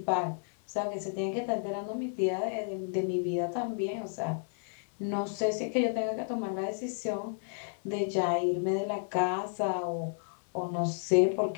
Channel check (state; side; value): silent; right; 57 dB below the other